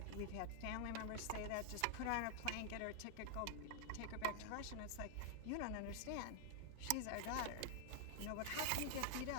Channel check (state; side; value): different; both; correlation -0.01